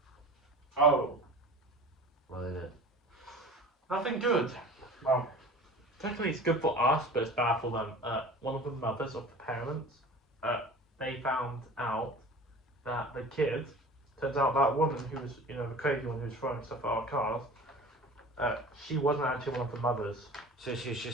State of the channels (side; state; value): both; normal; correlation 0.39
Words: Oh. What is it? Nothing good. Well, technically it's good for us, but it's bad for them. One of the mothers of the parents, they found out that the kid, turns out that woman who was, the crazy one who was throwing stuff at our cars, she wasn't actually one of the mothers. So she's